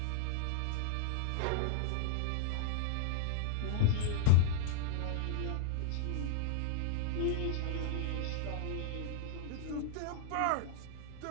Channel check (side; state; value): both; different; correlation -0.01